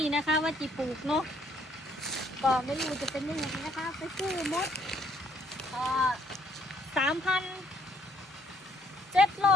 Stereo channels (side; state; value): both; normal; correlation 0.66